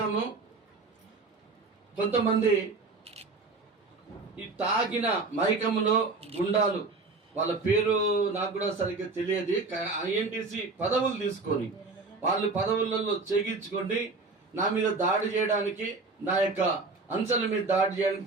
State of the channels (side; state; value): left; quieter; 3.8 dB